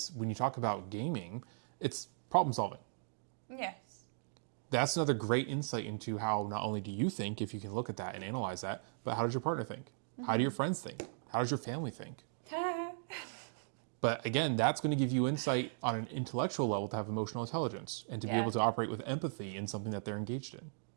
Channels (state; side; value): silent; left; digital silence